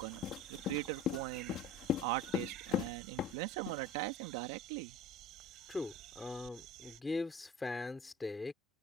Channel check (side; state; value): both; normal; correlation 0.38